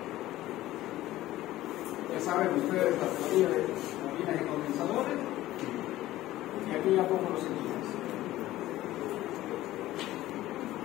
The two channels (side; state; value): right; quieter; 15.6 dB